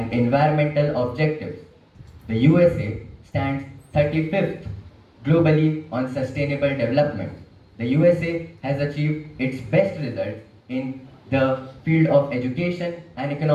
environmental objectives. The USA stands 35th globally on sustainable development. The USA has achieved its best results in the field of education and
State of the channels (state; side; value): identical; both; correlation 1.00